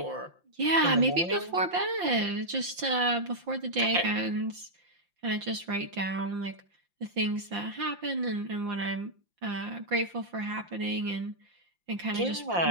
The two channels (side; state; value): left; late; 5.7 ms